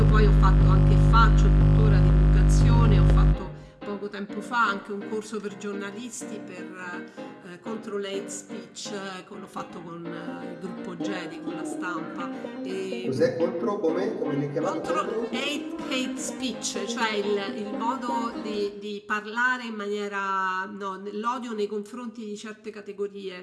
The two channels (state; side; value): identical; both; correlation 1.00